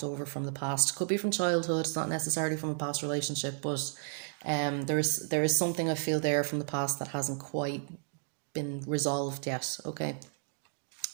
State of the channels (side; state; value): left; silent; digital silence